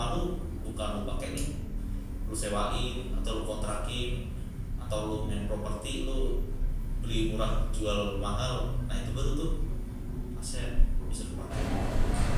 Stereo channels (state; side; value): identical; both; correlation 1.00